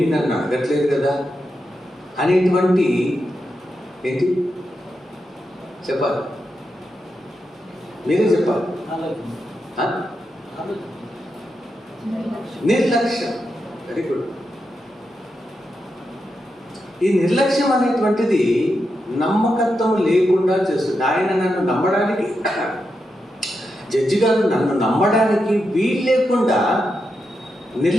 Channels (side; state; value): both; normal; correlation 0.86